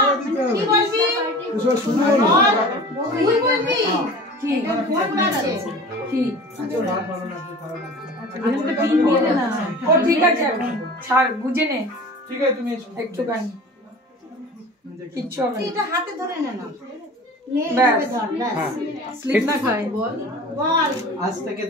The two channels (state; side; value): normal; both; correlation 0.39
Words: ঠিক আছে ছাড় বুঝে নে ঠিক আছে তুমি একটুখানি কিচ্ছু হবে না এটা হাতে ধরে নে না স্লিপ না খাই বল আজ থেকে